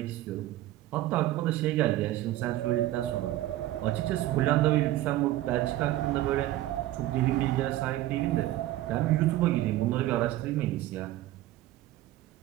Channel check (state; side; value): quieter; left; 15.2 dB